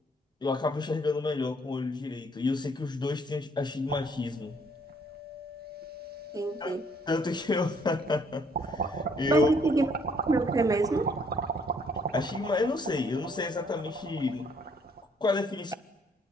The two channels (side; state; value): both; normal; correlation 0.65